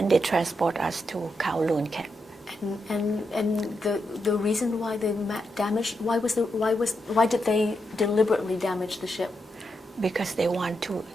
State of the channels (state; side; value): normal; both; correlation 0.83